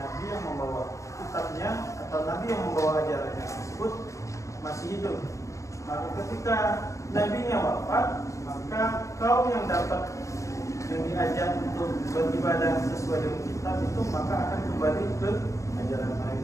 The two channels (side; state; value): right; late; 0.15 ms